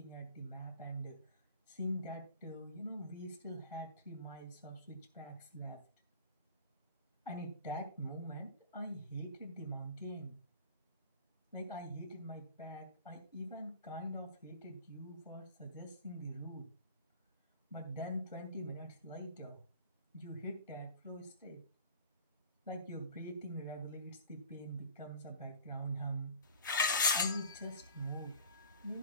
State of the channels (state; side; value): inverted; both; correlation -0.42